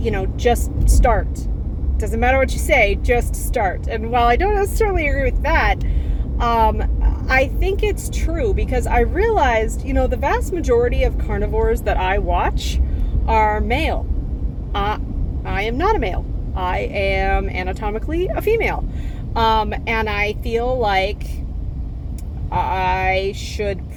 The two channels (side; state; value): both; identical; correlation 1.00